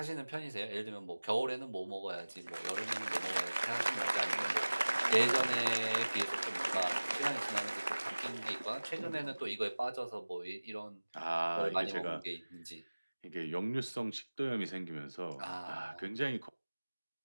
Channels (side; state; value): both; inverted; correlation -1.00